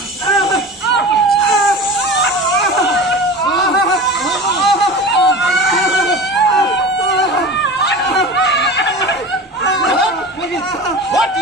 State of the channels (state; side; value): normal; both; correlation 0.33